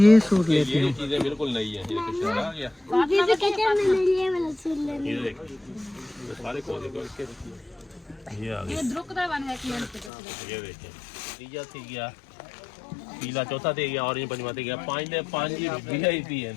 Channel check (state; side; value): drops out; right; at 10.1 s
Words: ये सूट लेती ये हूँ। चीजें बिल्कुल नई है। ये कुछ आ गया, बीबी कहते हैं मैंने लिए मैंने सुन लेना। ये देखिए, ये सारे खोले तो इसके ये आ गए। ये देखिए, तीजा थी गया, पीला चौथा दे गया, ऑरेंज पंजवा दे गया, 5 वीआईपी है।